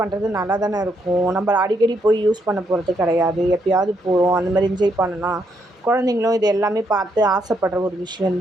நல்லா தானே இருக்கும். நம்ம அடிக்கடி போய் யூஸ் பண்ண போகிறது கிடையாது. எப்போயாவது போகிறோம், அந்த மாதிரி என்ஜாய் பண்ணலாம். குழந்தைங்களும் இது எல்லாமே பார்த்து ஆசைப்படுற ஒரு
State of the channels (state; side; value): normal; both; correlation 0.76